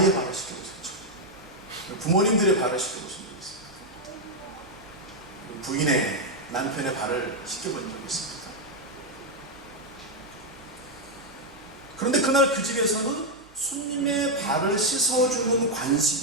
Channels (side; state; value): right; noise; hum, 27 dB below the sound